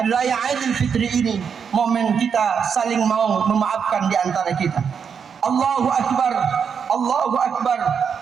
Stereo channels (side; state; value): left; quieter; 6.8 dB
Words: Raya Idul Fitri ini momen kita saling mau memaafkan di antara kita. Allahu Akbar, Allahu Akbar,